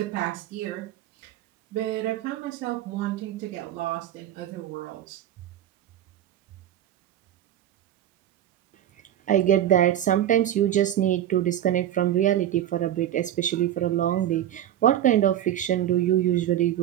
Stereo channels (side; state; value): left; quieter; 11.5 dB